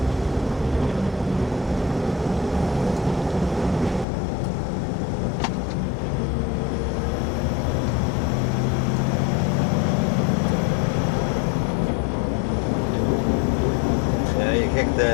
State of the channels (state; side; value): drops out; right; at 4.0 s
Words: Yeah, you kick